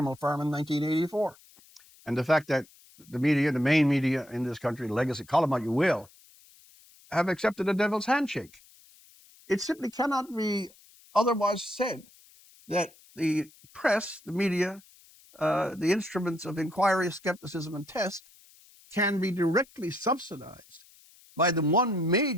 Farm and 1984. And the fact that the media, the main media in this country, legacy, call them what you will, have accepted a devil's handshake. It simply cannot be otherwise said that the press, the media, the instruments of inquiry, skepticism, and test can be directly subsidized by the one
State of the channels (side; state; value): left; noise; hiss, 26 dB below the sound